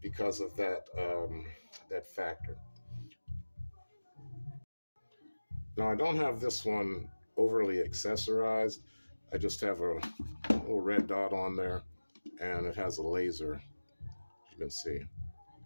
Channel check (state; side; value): inverted; both; correlation -1.00